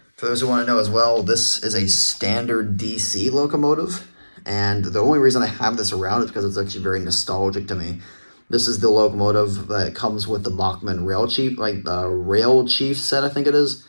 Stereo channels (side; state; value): both; inverted; correlation -1.00